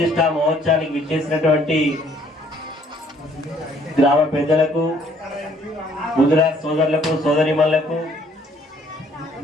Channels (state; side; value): normal; both; correlation 0.62